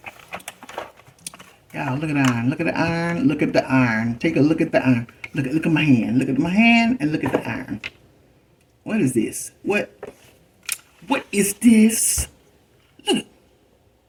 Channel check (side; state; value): both; identical; correlation 1.00